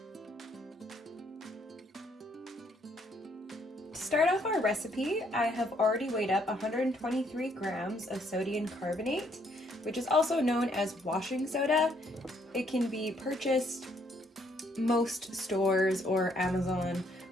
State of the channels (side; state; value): both; normal; correlation 0.69